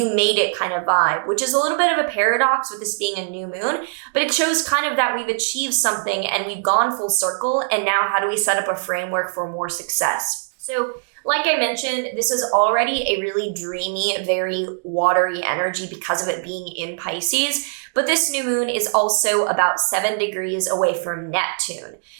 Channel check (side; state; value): left; silent; digital silence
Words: made it kind of vibe, which is a little bit of a paradox with this being a new moon, but it shows kind of that we've achieved something and we've gone full circle. And now how do we set up a framework for more success? So like I mentioned, this is already a really dreamy, very watery energy because of it being in Pisces. But this new moon is also about 7 degrees away from Neptune.